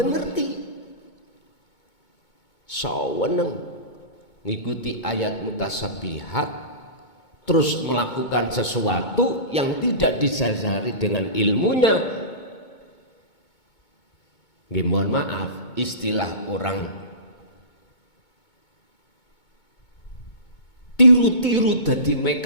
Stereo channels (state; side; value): late; right; 2.2 ms